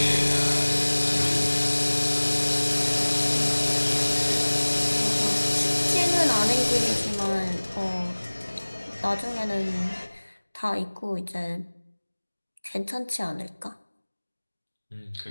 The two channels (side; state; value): both; inverted; correlation -1.00